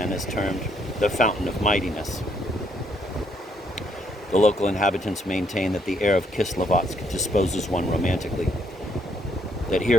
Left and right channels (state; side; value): normal; both; correlation 0.71